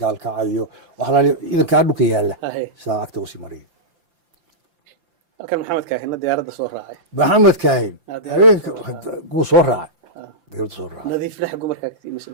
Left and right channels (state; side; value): late; left; 5.8 ms